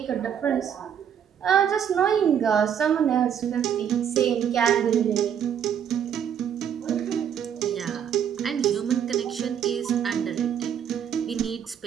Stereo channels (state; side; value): quieter; left; 8.7 dB